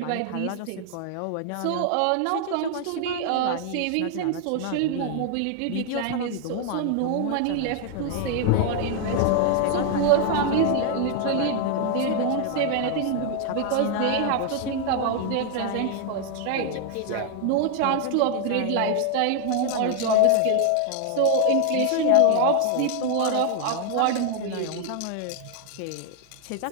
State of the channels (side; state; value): both; different; correlation 0.00